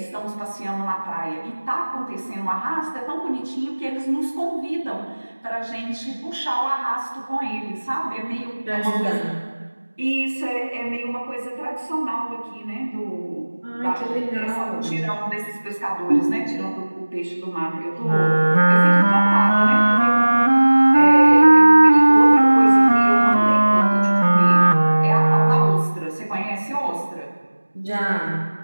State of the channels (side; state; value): both; inverted; correlation -1.00